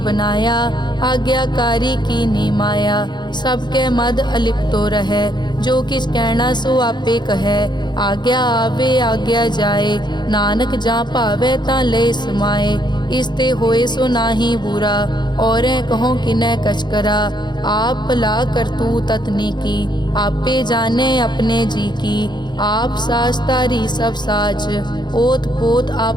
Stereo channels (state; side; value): late; right; 0.21 ms